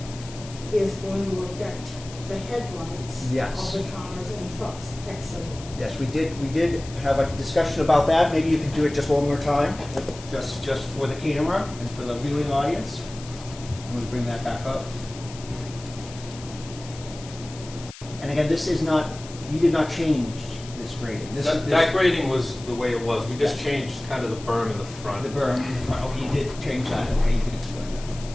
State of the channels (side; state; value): left; noise; hiss, 16 dB below the sound